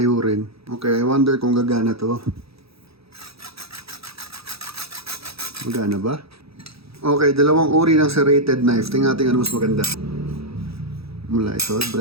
Okay, I wonder kung gagana to. Magana ba? Okay, dalawang uri ng serrated knife. Tingnan natin ano mas maganda. Mula ito,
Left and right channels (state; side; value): late; left; 0.77 ms